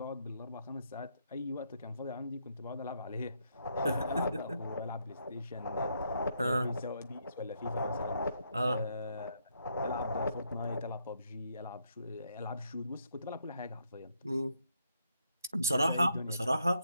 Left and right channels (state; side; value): inverted; both; correlation -0.75